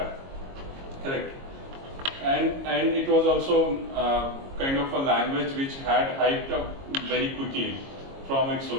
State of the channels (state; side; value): late; left; 22 ms